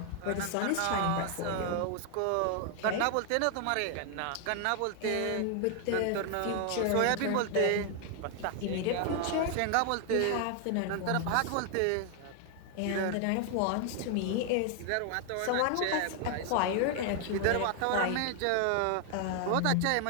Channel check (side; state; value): both; different; correlation 0.00